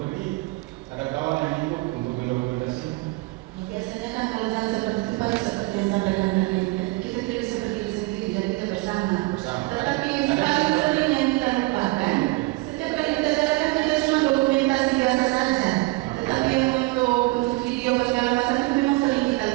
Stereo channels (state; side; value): quieter; left; 22.8 dB